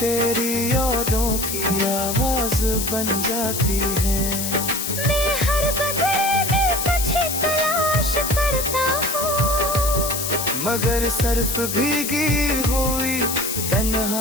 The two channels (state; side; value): noise; left; hiss, 3 dB below the sound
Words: यादों की आवाज बन जाती है। मैं हर बदले में तुझे तलाश करता हूँ, मगर सिर्फ भीगी हुई